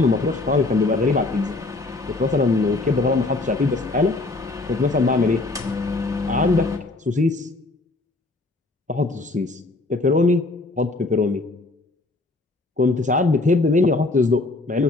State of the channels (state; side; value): quieter; right; 3.1 dB